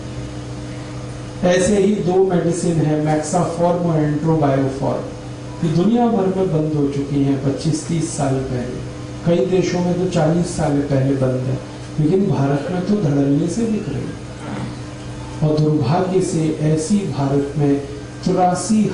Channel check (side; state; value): both; identical; correlation 1.00